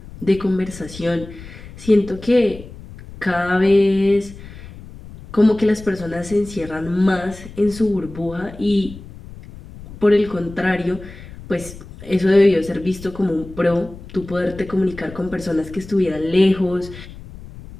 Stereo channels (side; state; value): left; noise; rumble, 16 dB below the sound